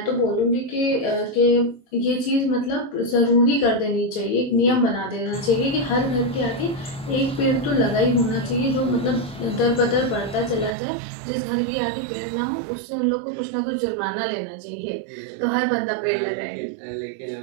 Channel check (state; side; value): drops out; left; at 10.7 s